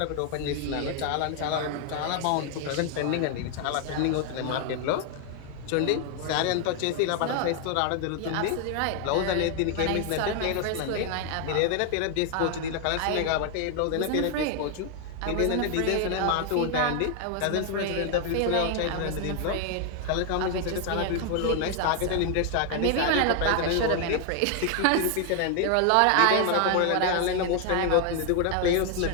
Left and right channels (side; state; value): both; different; correlation 0.00